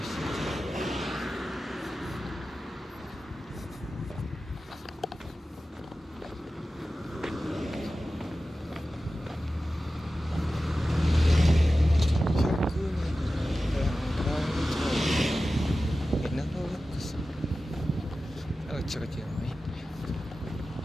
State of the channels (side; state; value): both; normal; correlation 0.94